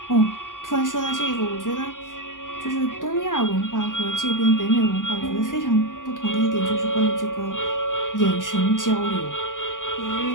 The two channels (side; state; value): right; late; 0.88 ms